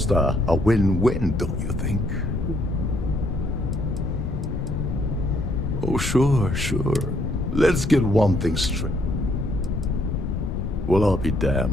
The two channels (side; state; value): left; noise; rumble, 3 dB below the sound